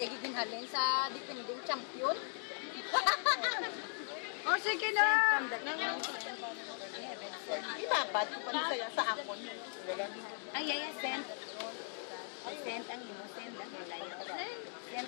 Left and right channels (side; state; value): right; silent; 52 dB below the other